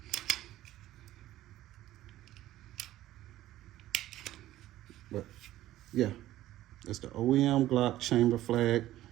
But yeah, it's the OEM Glock chamber flag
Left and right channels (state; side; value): quieter; left; 14.6 dB